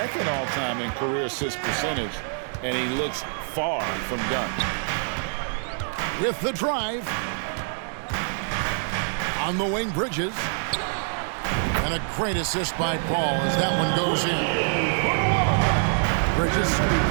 all-time in career assist percentage, and he looks far from done. With the drive. On the wing, Bridges. And a great assist by Paul as that one goes in. Bridges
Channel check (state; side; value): silent; left; 61 dB below the other